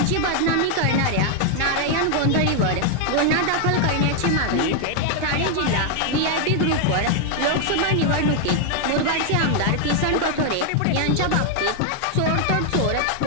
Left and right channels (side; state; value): both; different; correlation 0.00